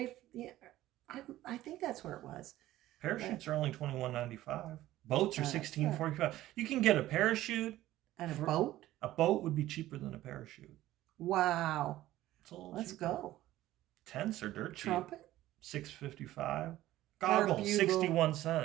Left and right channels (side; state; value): left; quieter; 15.1 dB